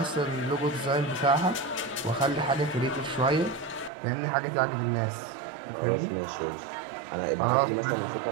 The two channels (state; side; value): drops out; left; at 3.9 s